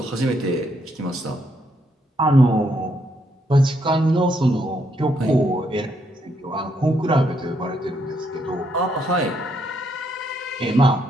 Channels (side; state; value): both; normal; correlation 0.75